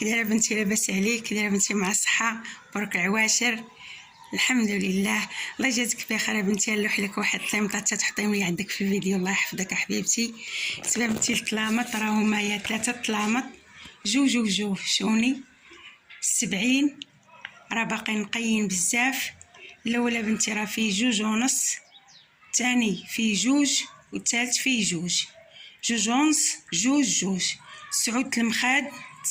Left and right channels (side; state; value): both; identical; correlation 1.00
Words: دايره بنتي؟ لاباس عليك؟ كي دايره بنتي؟ مع الصحه؟ برك عواشر؟ الحمد لله. الله يجازيك بخير بنتي. نلوح لك واحد الطليمطه تحطيهم لي عندك في الفيديو، الله يحفظك حبيبتي. سبب بنتي الطلامط راهما هي 3 طلامط، جوج شوني 70، راه باقي نقيين بزاف. الاولى بنتي راه فيه 2.5، الثاني فيه 2، والثالث فيه 2، 2.5، 2. سعود المخاد